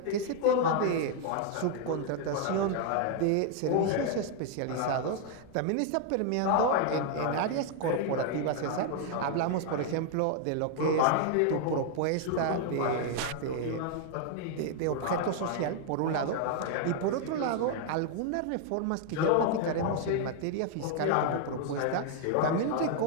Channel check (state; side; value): different; both; correlation 0.00